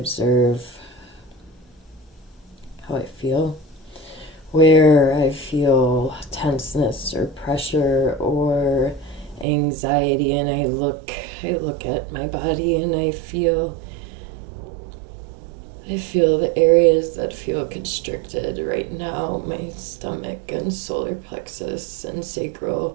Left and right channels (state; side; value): drops out; left; at 9.5 s